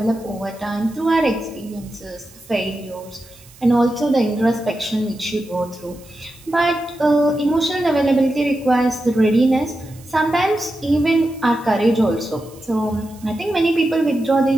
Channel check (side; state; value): right; noise; hiss, 24 dB below the sound